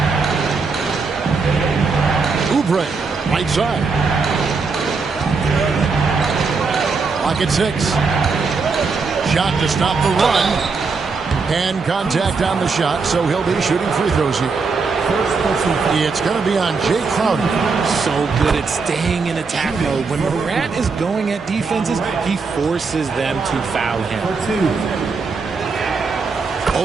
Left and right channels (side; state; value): left; quieter; 4.7 dB